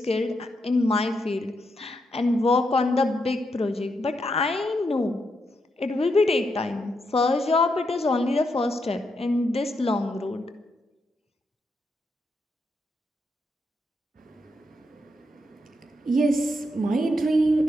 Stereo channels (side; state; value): both; normal; correlation 0.81